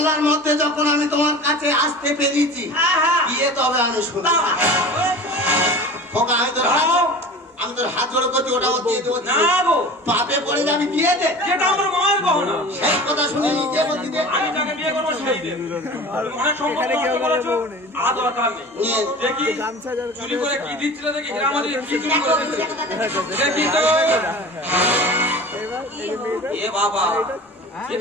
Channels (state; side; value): normal; both; correlation 0.38